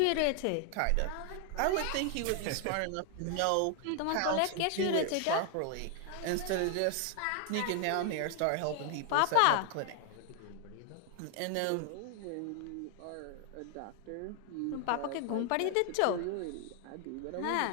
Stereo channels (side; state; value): both; different; correlation 0.00